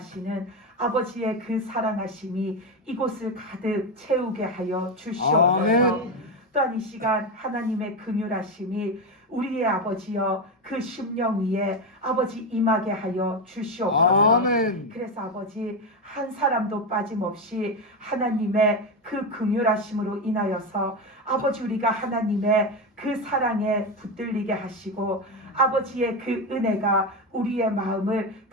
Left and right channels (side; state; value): both; normal; correlation 0.13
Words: 아버지의 그 사랑하심이 이곳을 가득 채우게 하여 주시옵소서. 아멘. 또한 이 시간 하나님의 긍휼하심이 우리의 아버지여 그 심령 위에 아버지 임하게 하여 주시옵소서. 아멘. 그래서 아버지 한 사람도 빠짐없이 하나님의 그 긍휼하심으로 인하여서 아버지 우리가 하나님의 그 사랑에 붙들리게 하시고 아버지의 그 은혜가 우리의 마음을